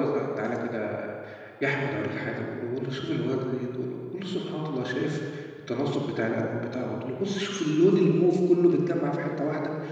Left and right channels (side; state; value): both; identical; correlation 1.00